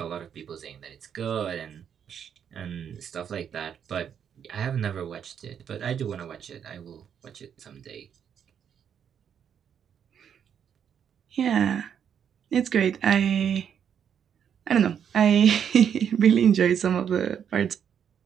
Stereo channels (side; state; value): left; quieter; 8.3 dB